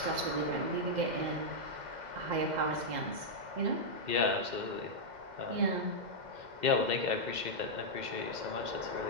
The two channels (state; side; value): late; left; 2.1 ms